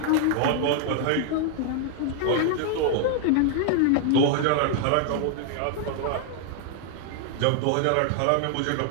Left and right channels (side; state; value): both; different; correlation 0.00